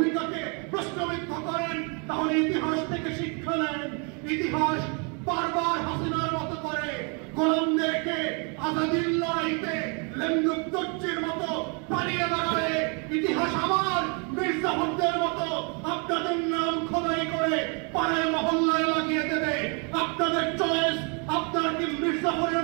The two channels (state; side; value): quieter; left; 35.9 dB